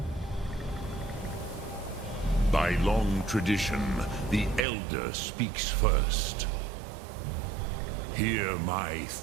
By long tradition, the Elder speaks first. Hear my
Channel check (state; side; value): drops out; left; at 4.6 s